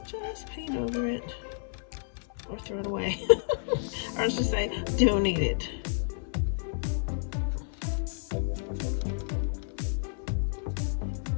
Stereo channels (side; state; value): right; silent; 57 dB below the other